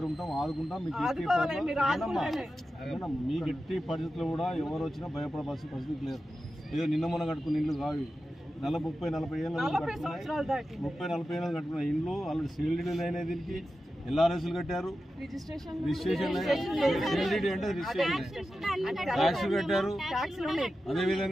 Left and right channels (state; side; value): normal; both; correlation 0.92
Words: ఉంటాం, ఆదుకుంటాం. మీకు మీకు ఎట్టి పరిస్థితుల్లో కూడా ఎవరు వచ్చినా భయపడవలసిన పరిస్థితి లేదు. ఏదో నిన్న మొన్న కట్టుకున్న ఇల్లు కావి 30-40 ఏళ్ళు 30-40 ఏళ్ళు కట్టుకున్న ఇండ్లు ఆల్రెడీ సీల్డ్ అయినాయి. దీనికి ఎల్ఆర్ఎస్లు కట్టారు, రిజిస్ట్రేషన్ సీల్డ్ అంటే రిజిస్ట్రేషన్ ట్యాక్స్ కట్టారు.